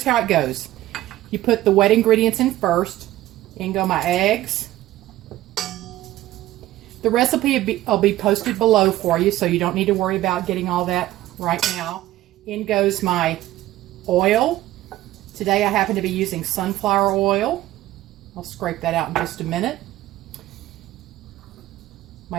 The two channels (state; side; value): quieter; left; 15.3 dB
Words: how it goes. You put the wet ingredients in first. In go my eggs. The recipe will be posted below for you, so you don't need to worry about getting all that right now. In goes my oil. Today I happen to be using sunflower oil. I'll scrape that out in just a minute. My